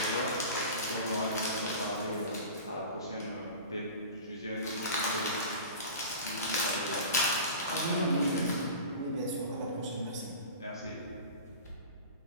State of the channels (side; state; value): both; inverted; correlation -0.35